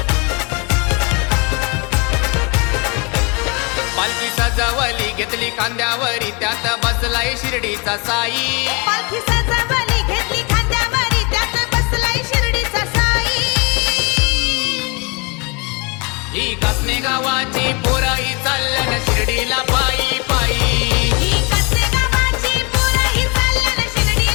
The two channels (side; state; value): right; quieter; 30.8 dB